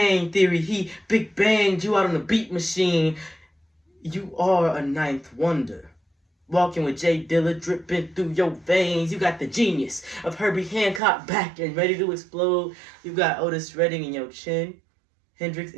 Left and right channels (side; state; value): left; drops out; at 11.0 s